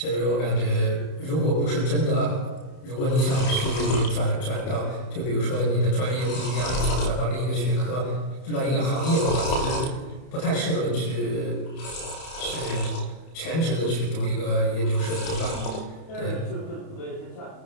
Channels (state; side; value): late; right; 31 ms